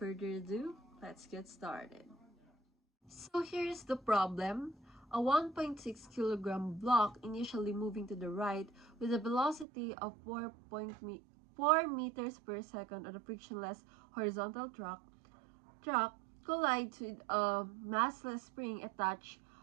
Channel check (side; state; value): left; drops out; at 9.7 s